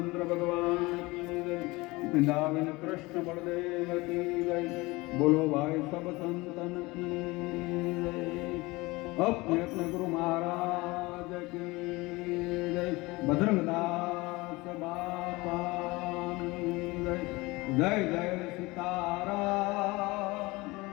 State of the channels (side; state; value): right; quieter; 22.5 dB